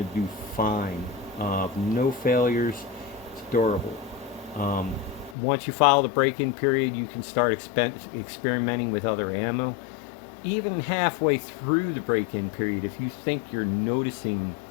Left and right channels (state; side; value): drops out; right; at 5.4 s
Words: do fine. No failures. It's durable. Once you follow the break-in period, you can start experimenting with other ammo. Even halfway through the break-in period, if you think you're noticing